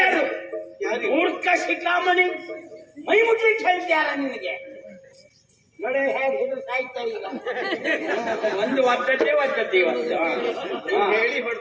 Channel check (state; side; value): identical; both; correlation 1.00